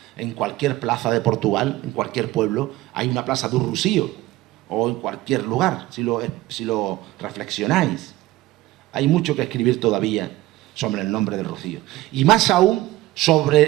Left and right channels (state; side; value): quieter; left; 17.2 dB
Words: En cualquier plaza de Portugal, en cualquier pueblo, hay una plaza do Rocío, o en cualquier lugar, si lo reflexionáis. Hay mucho que escribir todavía sobre el nombre del Rocío. Y más aún